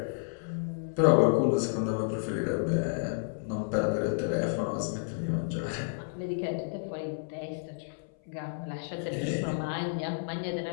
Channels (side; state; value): right; silent; 57 dB below the other